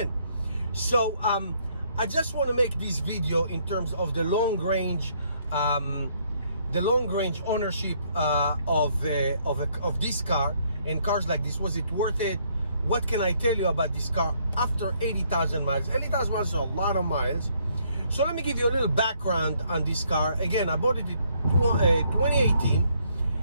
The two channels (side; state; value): both; inverted; correlation -0.68